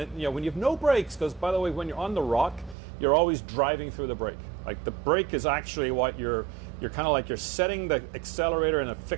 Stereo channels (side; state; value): left; drops out; at 2.8 s